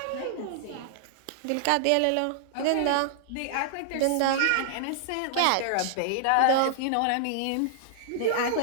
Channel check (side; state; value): both; different; correlation -0.01